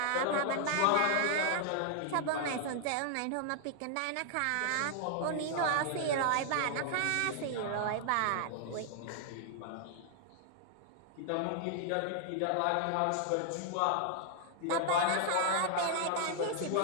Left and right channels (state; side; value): different; both; correlation 0.00